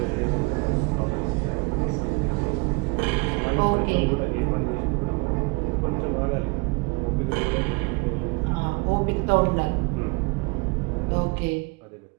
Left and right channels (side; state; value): left; quieter; 28.6 dB